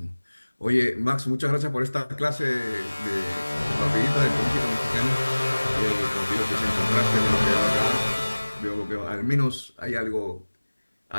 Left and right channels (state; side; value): inverted; both; correlation -1.00